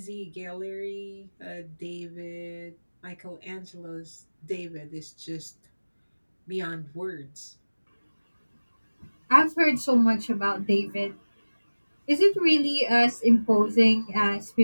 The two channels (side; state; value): both; inverted; correlation -1.00